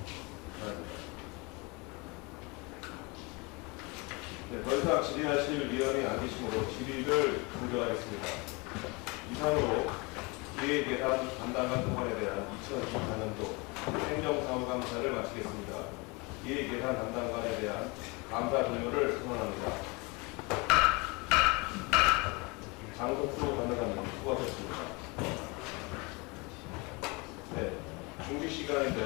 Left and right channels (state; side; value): quieter; right; 27.7 dB